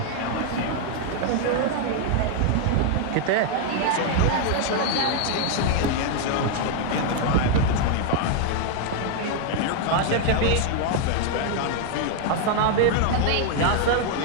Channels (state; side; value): different; both; correlation 0.00